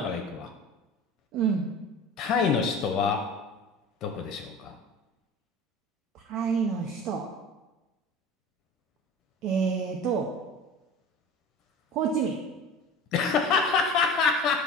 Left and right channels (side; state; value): both; normal; correlation 0.36